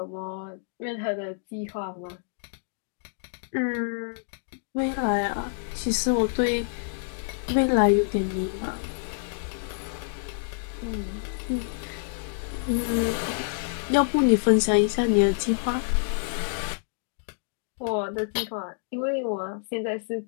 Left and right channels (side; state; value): right; silent; digital silence